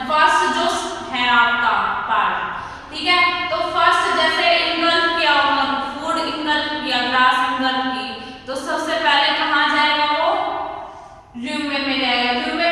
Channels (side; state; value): both; identical; correlation 1.00